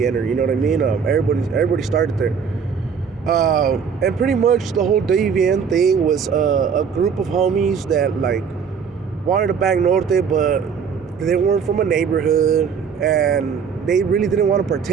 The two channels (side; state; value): left; quieter; 6.5 dB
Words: you know what I mean? Everybody started there. And pretty much the whole WVN thing was a group of homies that, like, wanted to bang Norte, but they weren't from a neighborhood, and they really didn't want to